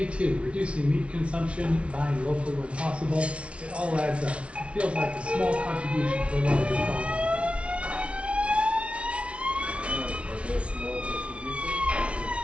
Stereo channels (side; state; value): left; late; 0.061 ms